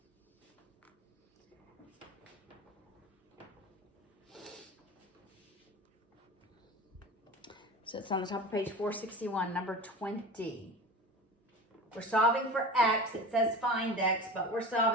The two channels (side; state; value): both; normal; correlation 0.34